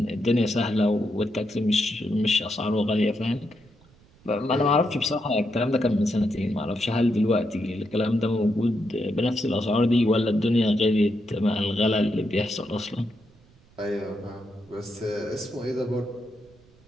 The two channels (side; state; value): right; noise; rumble, 29 dB below the sound